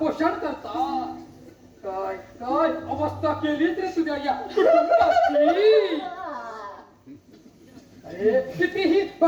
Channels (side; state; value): both; identical; correlation 1.00